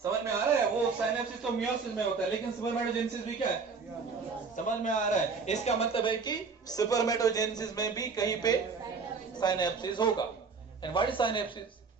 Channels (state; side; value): quieter; left; 5.0 dB